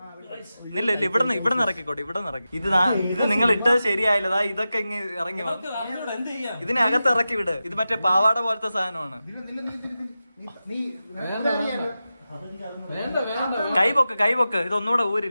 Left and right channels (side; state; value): both; inverted; correlation -0.93